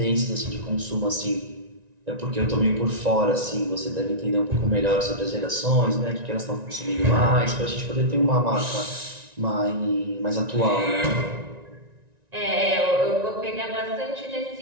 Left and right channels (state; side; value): late; left; 1.9 ms